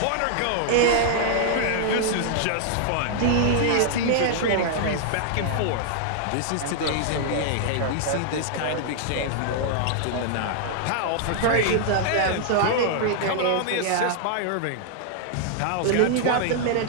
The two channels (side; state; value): both; different; correlation -0.01